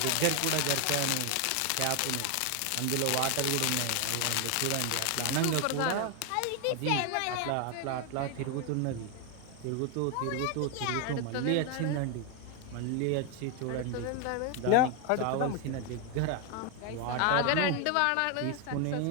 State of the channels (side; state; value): both; different; correlation 0.01